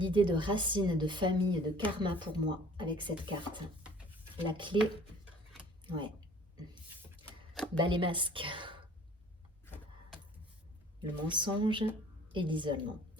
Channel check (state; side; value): normal; both; correlation 0.51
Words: de racine, de famille, de karma pour moi, avec cette carte. La clé, ouais. Bah, les masques. Le mensonge et l'isolement.